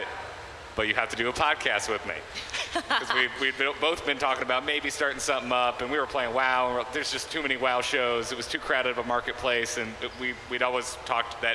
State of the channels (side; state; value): both; identical; correlation 1.00